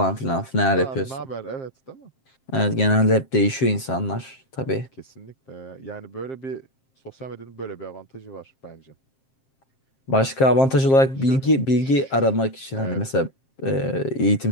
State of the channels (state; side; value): late; right; 7.5 ms